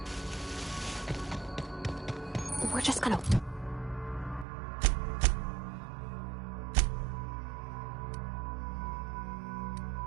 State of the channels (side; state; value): left; drops out; at 4.5 s